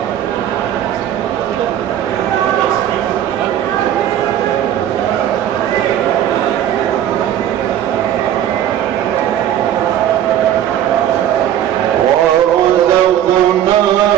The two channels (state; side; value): quieter; left; 11.0 dB